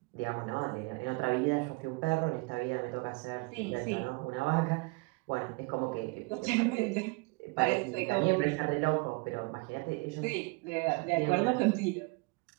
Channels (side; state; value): left; quieter; 27.6 dB